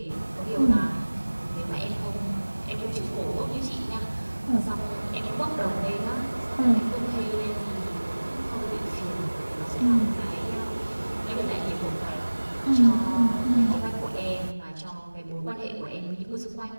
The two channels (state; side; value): inverted; both; correlation -1.00